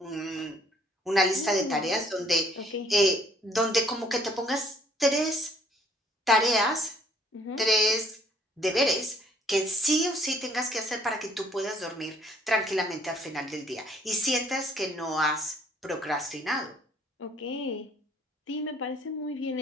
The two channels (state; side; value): normal; both; correlation 0.62